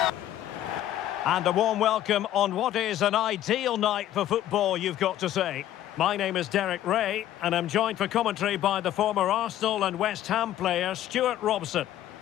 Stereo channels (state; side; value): quieter; right; 12.5 dB